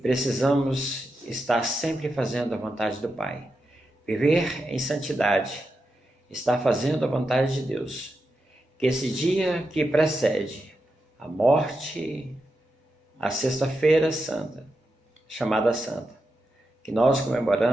estar sempre fazendo a vontade do Pai. Viver em santidade, estar fazendo a vontade de Deus. Que esse dia que precede a morte, a Sexta-feira Santa, chamada Santa, que nós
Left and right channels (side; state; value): both; normal; correlation 0.87